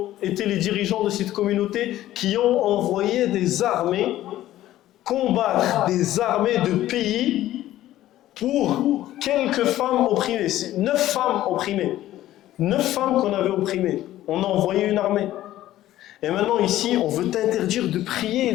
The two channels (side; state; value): right; quieter; 14.1 dB